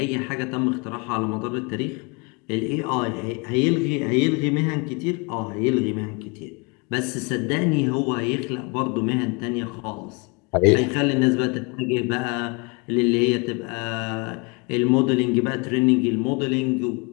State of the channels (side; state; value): right; quieter; 30.7 dB